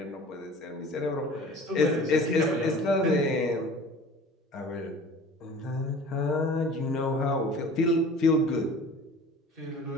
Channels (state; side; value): normal; both; correlation 0.43